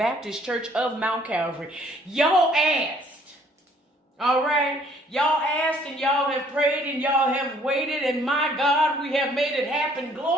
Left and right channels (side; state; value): both; normal; correlation 0.61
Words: Church of Mount Calvary. Y'all asked. All right. Y'all asked and y'all have prayed and y'all have waited. And my God, we have made it happen.